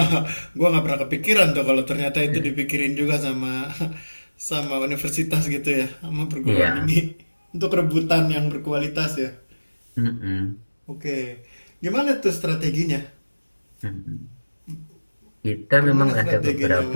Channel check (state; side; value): inverted; both; correlation -1.00